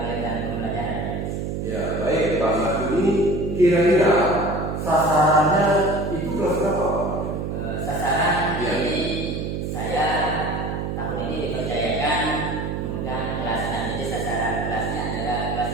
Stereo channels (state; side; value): noise; right; hum, 3 dB below the sound